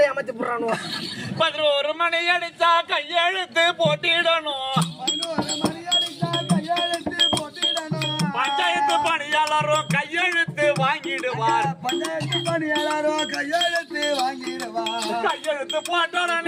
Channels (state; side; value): identical; both; correlation 1.00